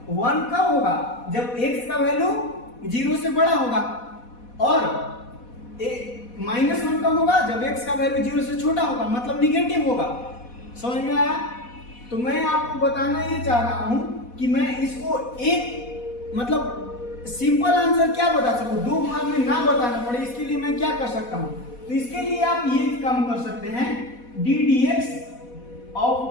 1 कब होगा, जब x का वैल्यू 0 से बड़ा होगा, और -1 कब होगा, जब x का वैल्यू 0 से छोटा होगा, मतलब निगेटिव होगा। समझ में आया। तो मैं आपको बताना ये चाह रहा हूं कि मैं इसको एक मतलब सिंपल आंसर क्या बता सकूं, दो भाग में ना बताना पड़े, इसके लिए मैं क्या कर सकता हूं। तो इसके लिए आप ये काम कर सकते हैं, d dx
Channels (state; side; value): late; right; 4.1 ms